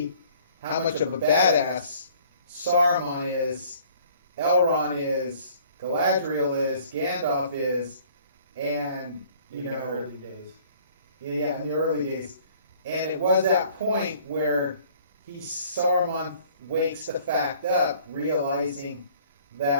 how much of a badass Saruman is, Elrond is, Galadriel is, Gandalf is, and, you know, Early days. yeah, in the early days. And it was that point where Saruman wakes the fact up, realizing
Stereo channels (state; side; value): inverted; both; correlation -0.56